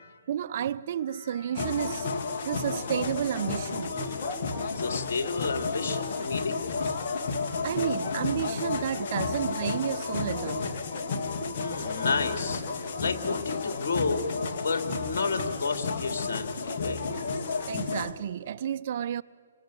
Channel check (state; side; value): inverted; both; correlation -0.67